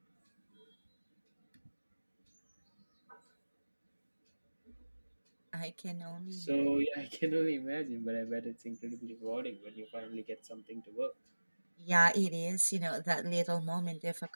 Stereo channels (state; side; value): inverted; both; correlation -1.00